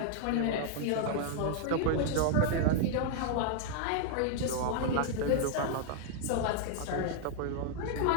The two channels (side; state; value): both; different; correlation 0.00